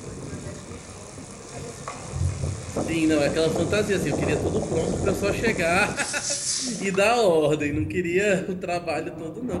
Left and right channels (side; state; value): both; identical; correlation 1.00